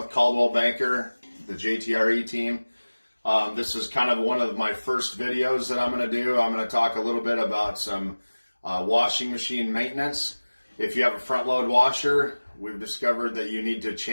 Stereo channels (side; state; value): both; inverted; correlation -1.00